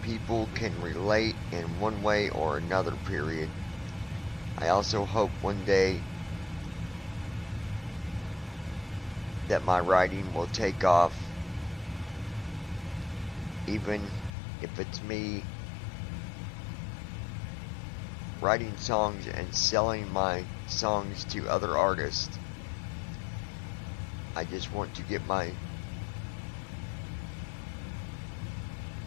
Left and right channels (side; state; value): right; drops out; at 14.3 s